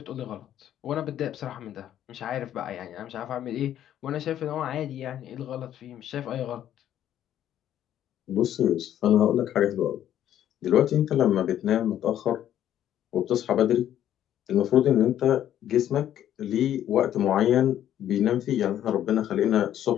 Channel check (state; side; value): quieter; right; 11.2 dB